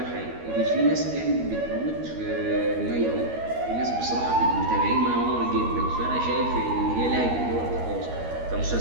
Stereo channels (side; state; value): left; late; 13 ms